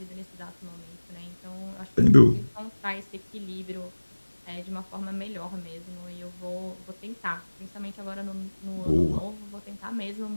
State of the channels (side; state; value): both; inverted; correlation -1.00